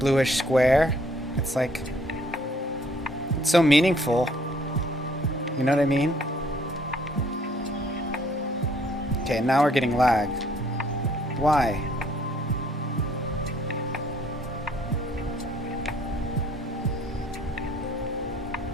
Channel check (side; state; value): both; normal; correlation 0.62